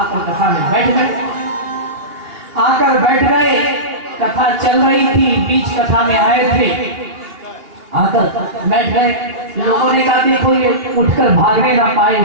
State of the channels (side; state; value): left; late; 2.9 ms